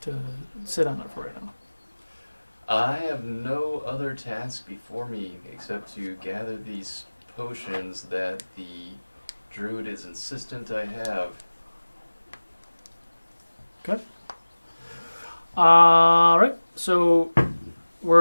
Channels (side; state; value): both; inverted; correlation -1.00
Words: to sit on it for right now? I have no other task before me except to gather these potions that the druid is insistent I have. Okay. All right. So,